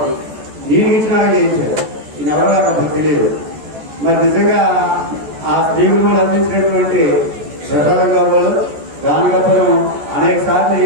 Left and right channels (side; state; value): left; late; 14 ms